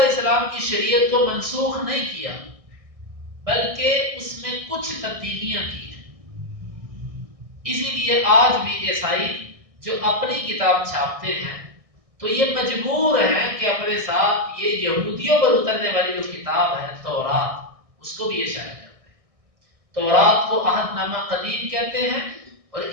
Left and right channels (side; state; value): left; late; 1.6 ms